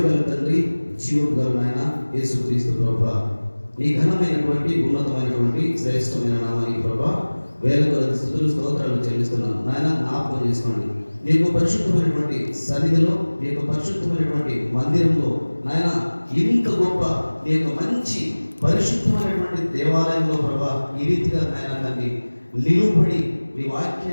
తండ్రి, జీవోద్గల నాయన యేసుక్రీస్తు ప్రభువా, నీ ఘనమైనటువంటి ఉన్నతమైనటువంటి శ్రేష్టమైన నామానికి ప్రభువా వేల కొలది స్తుతులు స్తోత్రాలు చెల్లిస్తున్నాను. నాయన జ్ఞాపకం చేసుకోండి, నీకు పరిశుద్ధమైనటువంటి సన్నిధిలో, నీకు పరిశుద్ధమైనటువంటి మందిరంలో నాయన ఇంత గొప్ప నీ యొక్క మంచి పరిశుద్ధమైనటువంటి దేవాలయంలో ప్రభా ఈ రీతిగా నాయన తండ్రి నిలువబడి నీ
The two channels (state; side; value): inverted; both; correlation -1.00